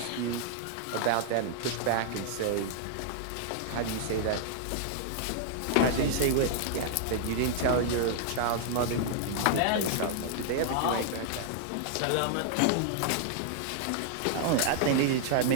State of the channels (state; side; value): different; both; correlation -0.01